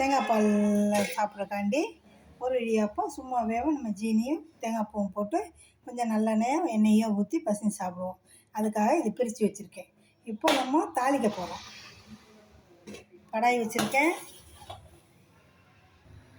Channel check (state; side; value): identical; both; correlation 1.00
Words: பாலில் சாப்பிட்றக்காண்டி, ஒரு இடியாப்பம் சும்மாவே நம்ம ஜீனியும் தேங்காய் பூவும் போட்டு கொஞ்சம் நல்லெண்ணெயும் எண்ணெயும் ஊற்றி பசங்க சாப்பிடுவோம். அதுக்காக இது பிரித்து வச்சுருக்கேன். இப்போ நம்ம தாளிக்க போகிறோம். கடாய் வச்சுருக்கேன்.